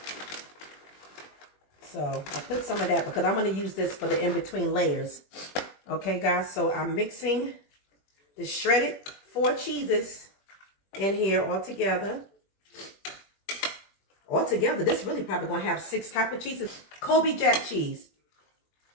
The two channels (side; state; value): right; late; 21 ms